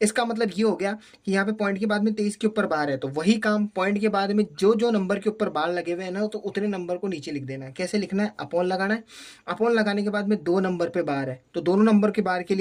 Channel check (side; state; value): both; identical; correlation 1.00